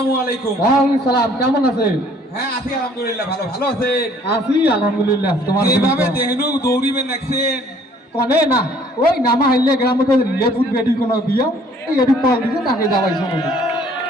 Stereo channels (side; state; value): both; normal; correlation 0.58